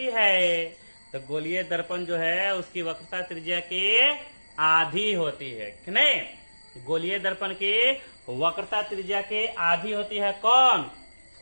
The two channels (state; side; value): inverted; both; correlation -1.00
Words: है। तो गोलीय दर्पण जो है उसकी वक्रता त्रिज्या की आधी होती है कि नहीं। गोलीय दर्पण की वक्रता त्रिज्या के आधी होती है कौन,